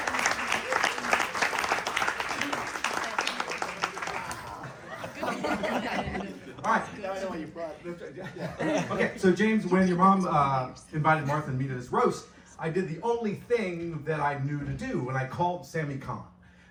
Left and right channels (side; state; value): both; identical; correlation 1.00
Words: All right. Now I know why you brought it. Okay, so James, when your mom invited Martha and me to this roast, I did the only thing that I knew to do, and I called Sammy Kahn.